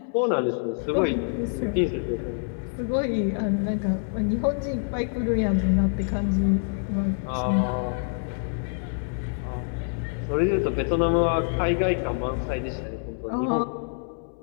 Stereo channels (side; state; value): right; silent; 61 dB below the other